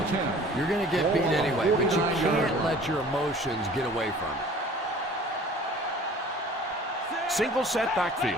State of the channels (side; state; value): both; normal; correlation 0.48